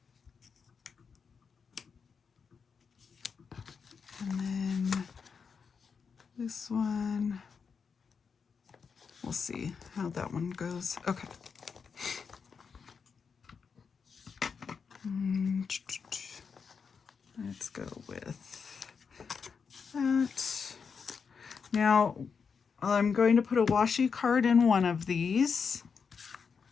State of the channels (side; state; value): right; quieter; 5.9 dB